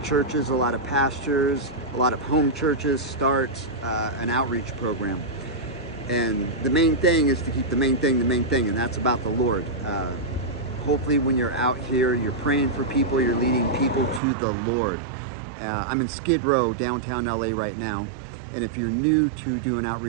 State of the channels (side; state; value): left; drops out; at 14.2 s